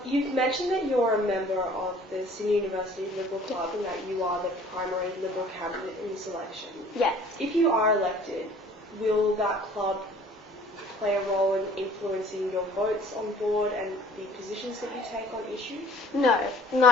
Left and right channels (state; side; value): normal; both; correlation 0.52